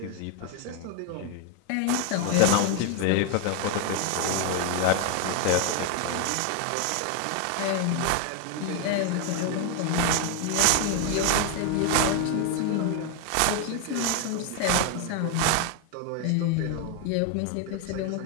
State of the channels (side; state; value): both; different; correlation 0.01